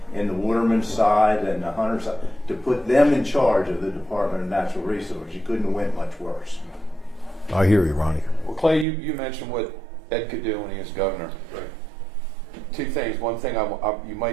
in the watermen's side and the hunters' side, to put them in charge of the Department of Natural Resources, you couldn't have went much worse. I hear you, Ronnie. Well, Clay, you mentioned what Ed could do when he was governor. Right. Two things. One thing, you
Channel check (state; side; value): drops out; left; at 8.8 s